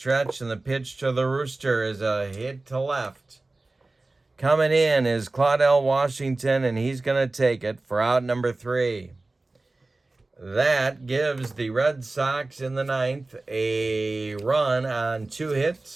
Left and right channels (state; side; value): quieter; left; 3.1 dB